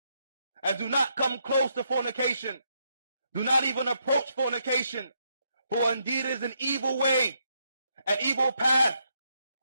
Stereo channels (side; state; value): both; inverted; correlation -0.77